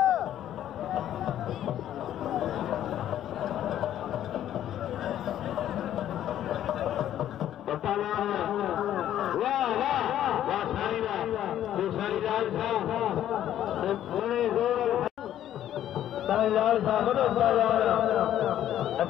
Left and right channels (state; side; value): quieter; right; 11.5 dB